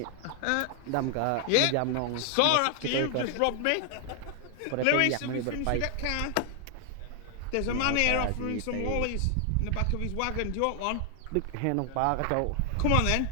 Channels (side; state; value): both; different; correlation 0.00